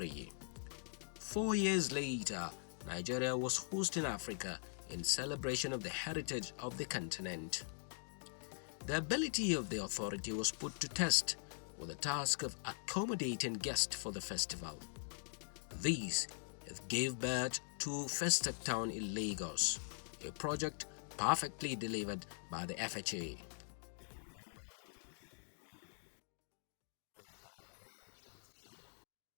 4 years later, Nigeria was hosting Africa in celebration of the heritage of the continent. The ability of the authority was put to test with the task of accommodating guests for the festival. These gave birth to First Stack Town in Lagos, a project perfectly delivered by the FHA. If you remember vividly, during the First Stack 77,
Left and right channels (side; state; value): right; silent; digital silence